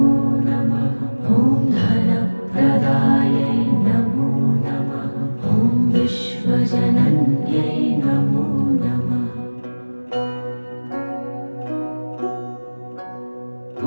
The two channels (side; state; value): both; inverted; correlation -1.00